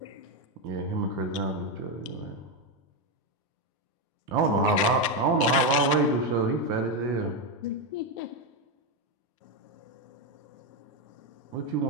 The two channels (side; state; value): both; normal; correlation 0.07